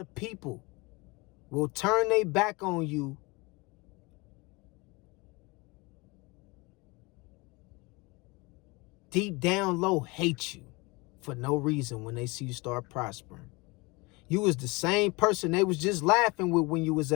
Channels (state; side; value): quieter; right; 25.8 dB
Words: people will turn their back on you deep down low, hate you for no reason when they see you start prospering. You was the same person they was just laughing with when you was